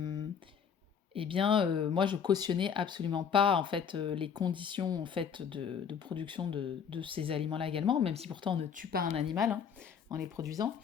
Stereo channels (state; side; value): quieter; right; 7.3 dB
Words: je cautionnais absolument pas en fait les conditions en fait de production de ces aliments-là également, même si pourtant on ne tue pas un animal en les produisant.